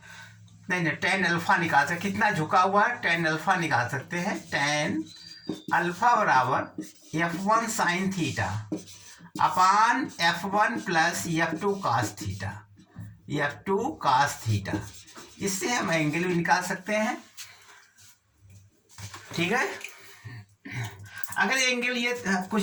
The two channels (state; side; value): identical; both; correlation 1.00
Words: नहीं tan अल्फा निकाल सकते, कितना झुका हुआ है tan अल्फा निकाल सकते हैं, tan अल्फा बराबर F1 sine theta upon F1 plus F2 cos theta, F2 cos theta, इससे हम एंगल भी निकाल सकते हैं, ठीक है। अगर एंगल ये